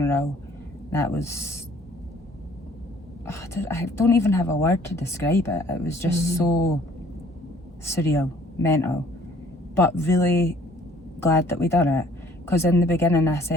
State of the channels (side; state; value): both; normal; correlation 0.57